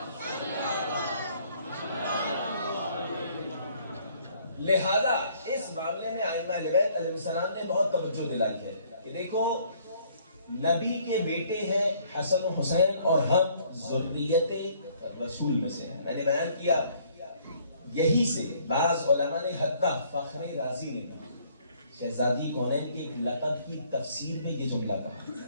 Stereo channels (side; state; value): both; inverted; correlation -0.62